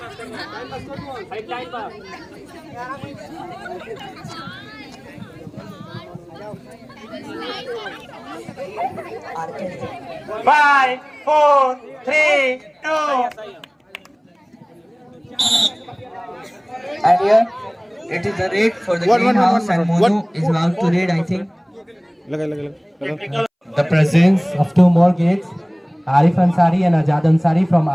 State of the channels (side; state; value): both; identical; correlation 1.00